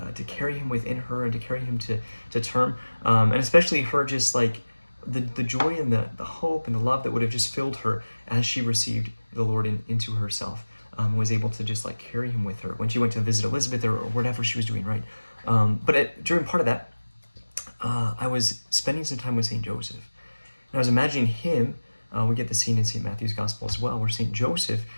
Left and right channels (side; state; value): both; inverted; correlation -1.00